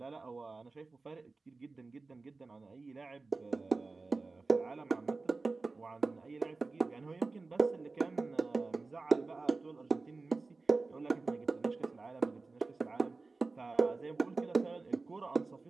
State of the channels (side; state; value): left; quieter; 3.8 dB